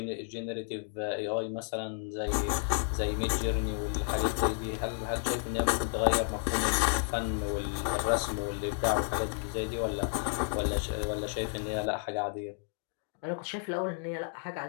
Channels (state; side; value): silent; right; 57 dB below the other